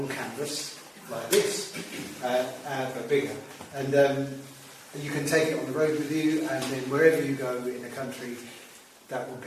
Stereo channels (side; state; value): both; identical; correlation 1.00